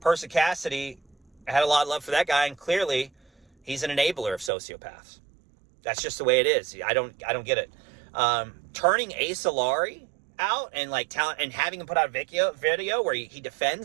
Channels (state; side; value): drops out; left; at 4.5 s